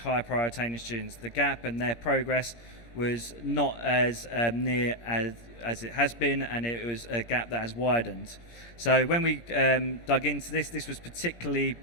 priority students. The gap and their progress was not as near as it has been, and it was a gap that has widened. So when we dug into this was particularly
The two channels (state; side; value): late; right; 17 ms